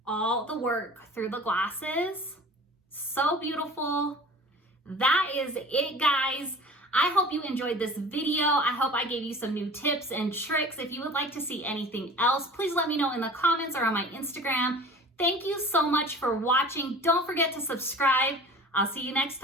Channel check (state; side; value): normal; both; correlation 0.42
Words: all the work through the glasses. So beautiful. That is it, guys. I hope you enjoyed this video. I hope I gave you some new tips and tricks. If you would like to see anything else, please let me know in the comments or on my Instagram. Thank you so much for watching. Don't forget to subscribe. I'll see you next